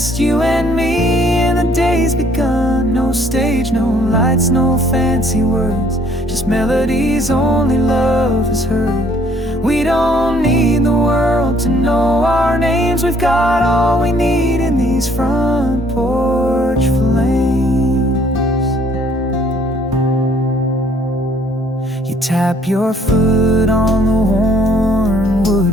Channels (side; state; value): both; normal; correlation 0.62